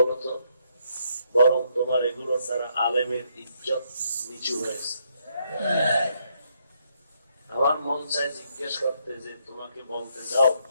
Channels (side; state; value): both; inverted; correlation -0.74